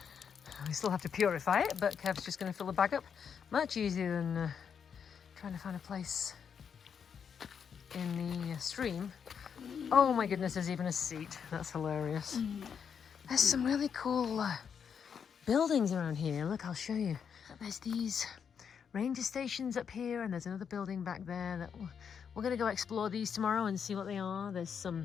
We still have to purify it, but Kev's just going to fill the bag up. Much easier than trying to find a place in the stream. Oh my goodness, there's even a seat. That's hilarious. There's some really cool buildings around here. Look, I'll show you. There's these ranger stations up here, and there's another building back there that we're going to go explore these tomorrow and see what they are. There's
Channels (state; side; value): quieter; right; 7.1 dB